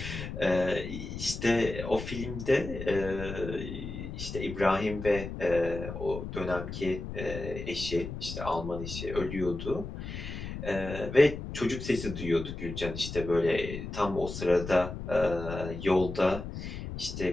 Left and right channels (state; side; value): noise; left; rumble, 8 dB below the sound